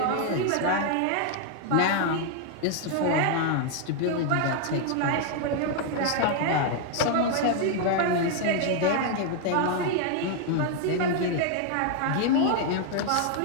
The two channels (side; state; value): both; different; correlation 0.00